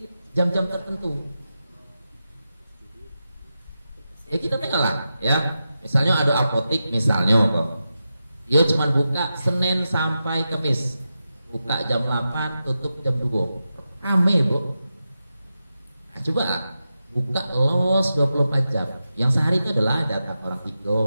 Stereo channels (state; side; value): inverted; both; correlation -0.90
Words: jam-jam tertentu. Ya kita tengoklah ya. Misalnya ada apotik misalnya kok. Dia cuma buka Senin sampai Kamis. Buka jam 8, tutup jam 2. Rame, Bu. Nah, coba lah, buka los 24 jam. Yang sehari itu adalah datang orang